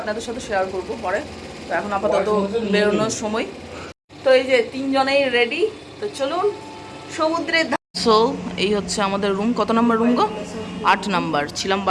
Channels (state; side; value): identical; both; correlation 1.00